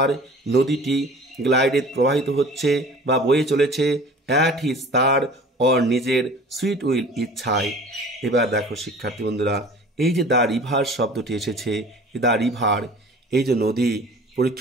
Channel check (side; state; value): both; normal; correlation 0.44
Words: নদীটি, গ্লাইডেড প্রবাহিত হচ্ছে বা বয়ে চলেছে, অ্যাট হিজ তার নিজের সুইট উইল ইচ্ছায়। এবার দেখো শিক্ষার্থী বন্ধুরা, এই যে দ্য রিভার শব্দটি এসেছে, দ্য রিভার এই যে নদী,